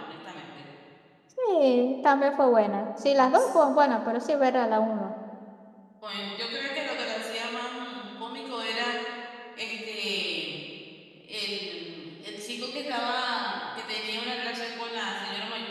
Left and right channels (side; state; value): both; identical; correlation 1.00